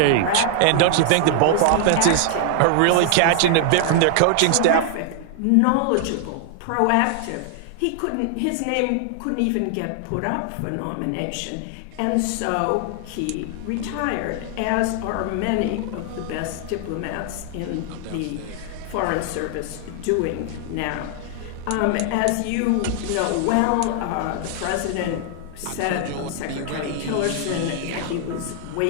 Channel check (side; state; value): both; different; correlation 0.00